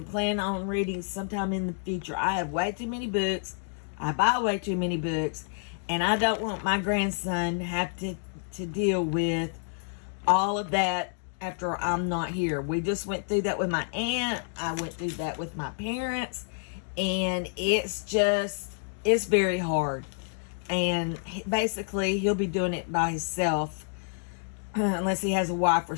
plan on reading sometime in the future. I have way too many books. I buy way too many books. And I don't want my grandson to have to deal with all of that after I'm not here. We just went through that with my aunt. I went through that with my parents. And it's very hard. And basically, he'll be doing it by himself. Unless he has a wife or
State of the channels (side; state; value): right; silent; digital silence